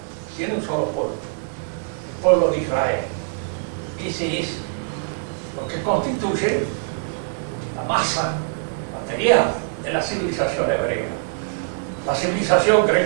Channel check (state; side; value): silent; left; digital silence